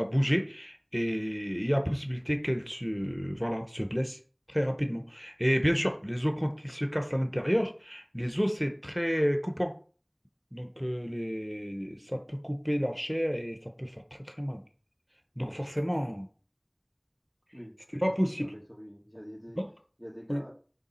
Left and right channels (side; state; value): both; identical; correlation 1.00